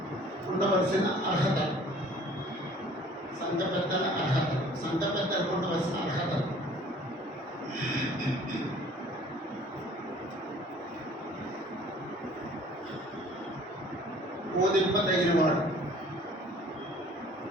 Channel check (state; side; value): normal; both; correlation 0.51